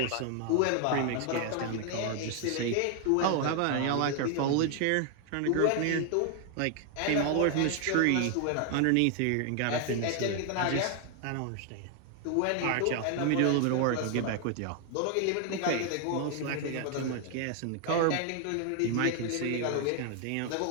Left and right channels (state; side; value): different; both; correlation 0.00